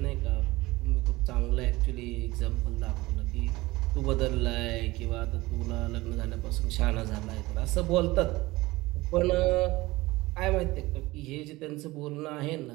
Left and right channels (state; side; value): quieter; left; 20.1 dB